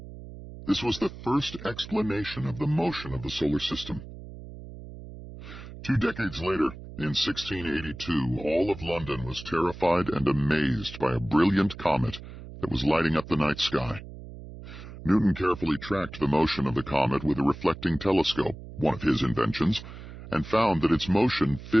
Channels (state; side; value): noise; right; hum, 14 dB below the sound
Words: This was the first explanation of the motion of the solar system. 2 decades later, in 1682, all of London was terrified and amazed by a brilliant comet that was lighting up the night sky. Newton carefully tracked the motion of the comet with a reflecting telescope, one of his inventions, and found that its motion